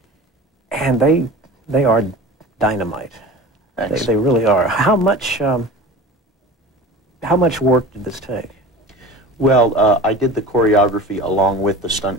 and they are dynamite. They really are. How much work did this take? Well, I did the choreography along with the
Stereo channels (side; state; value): both; normal; correlation 0.36